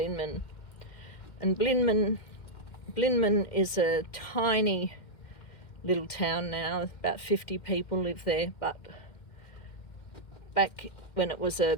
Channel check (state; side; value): late; right; 2.1 ms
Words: And Blinman is a tiny little town now. About 50 people live there, but back when it was a